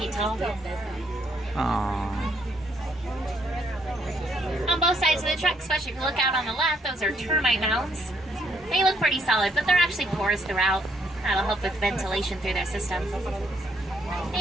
tall. Aww. On both sides of the truck, especially if you look out on the left, those are termite mounds. They look pretty solid, but they're actually porous throughout. That'll help with ventilation through their system.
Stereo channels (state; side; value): normal; both; correlation 0.70